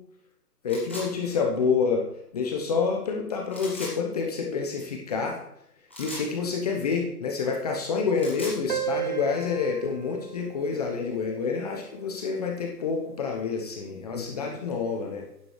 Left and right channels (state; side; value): quieter; right; 4.2 dB